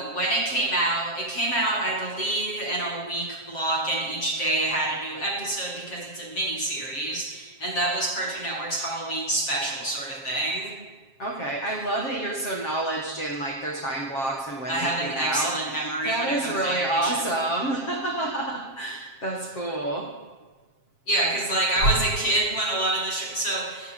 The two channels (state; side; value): late; right; 7.5 ms